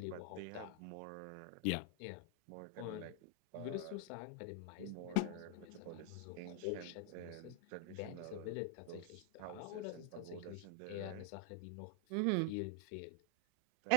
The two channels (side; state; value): both; different; correlation 0.00